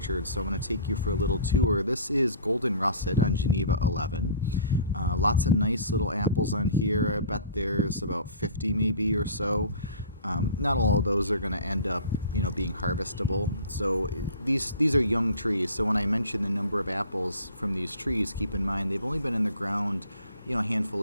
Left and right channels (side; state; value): both; inverted; correlation -0.45